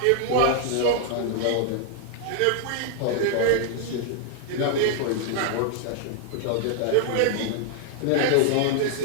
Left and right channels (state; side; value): different; both; correlation 0.00